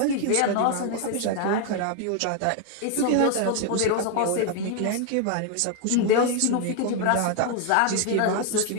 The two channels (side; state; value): both; different; correlation 0.00